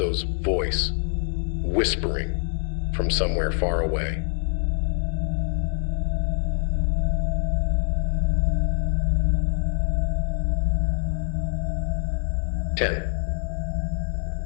voice whispering from somewhere far away.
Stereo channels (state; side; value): silent; right; digital silence